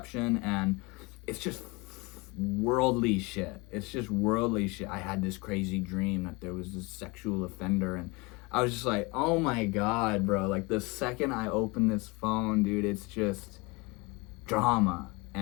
and it's just worldly shit. I had this crazy dream that there was this sexual offender, and I was just like, oh my God, bro. Like, the second I open this phone, dude, it's just drama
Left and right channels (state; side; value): quieter; right; 26.2 dB